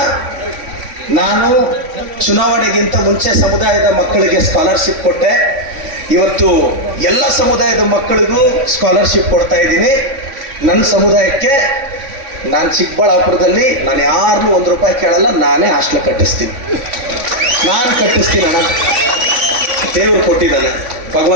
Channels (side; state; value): left; late; 3.5 ms